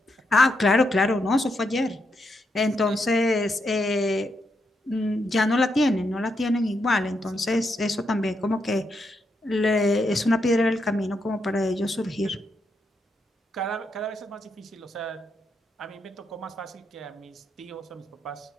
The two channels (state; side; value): normal; both; correlation 0.81